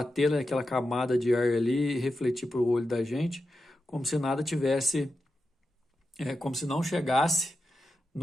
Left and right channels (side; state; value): both; normal; correlation 0.89